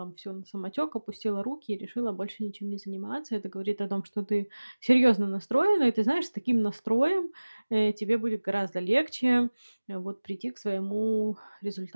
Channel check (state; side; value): inverted; both; correlation -1.00